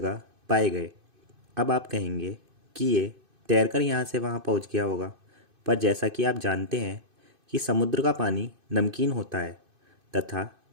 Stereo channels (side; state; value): left; late; 2.5 ms